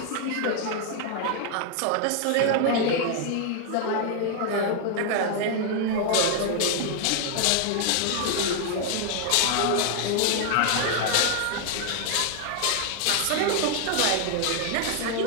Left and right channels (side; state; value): both; different; correlation 0.00